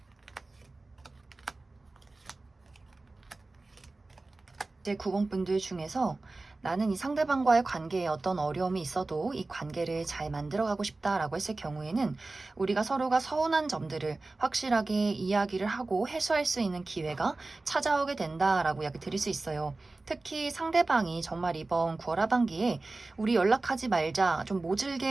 이제 9번 분들 중에서 나는 이 상대방과의 관계에 어떤 어려움이 있어도 이 관계를 잘 만들어가고 싶다라고 했을 경우에는 우리가 서로가 서운한 점들을 확실하게 이야기를 하고 해소할 수 있는 기회가 찾아오게 된다라고 이야기 드릴 수 있어요. 특히 상대방이 정말 이번 9월 하반기에 우리 연락하지 말자 좀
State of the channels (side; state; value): left; quieter; 3.3 dB